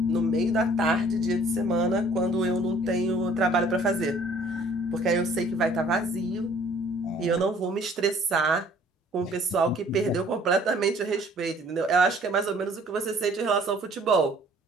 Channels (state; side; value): normal; both; correlation 0.56